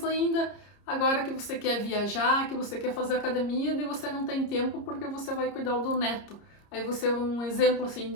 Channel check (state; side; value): late; right; 30 ms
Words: ainda. Agora que você quer viajar, que você quer fazer academia, daí você não tem tempo porque você vai cuidar do neto. Aí você, um exemplo assim,